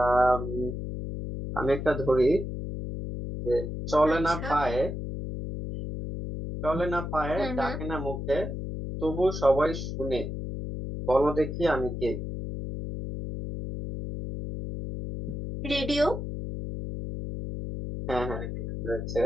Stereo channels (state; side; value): noise; left; hum, 5 dB below the sound